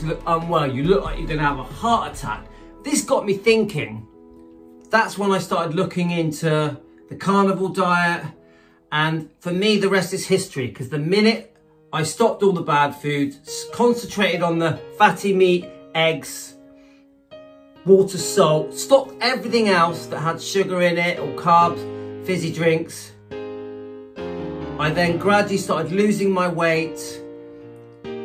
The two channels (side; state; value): both; identical; correlation 1.00